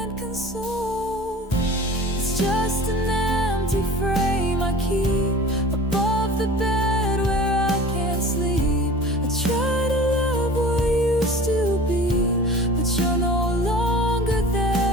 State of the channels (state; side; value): normal; both; correlation 0.40